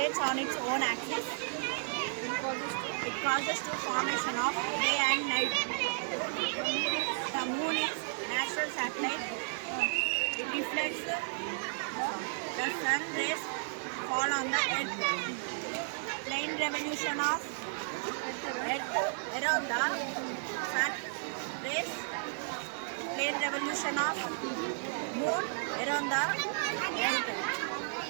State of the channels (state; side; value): silent; left; digital silence